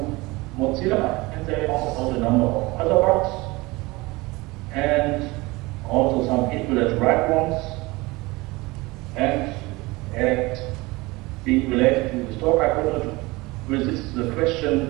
Mozilla, and they found out a number of other bugs, and also some equivalent right ones, and being related to the stock, I wanted to resist the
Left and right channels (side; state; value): left; quieter; 22.5 dB